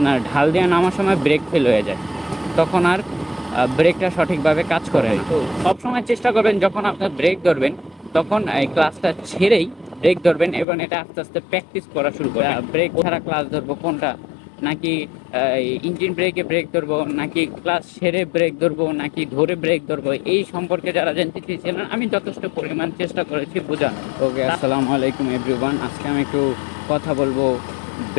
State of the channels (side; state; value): right; drops out; at 10.7 s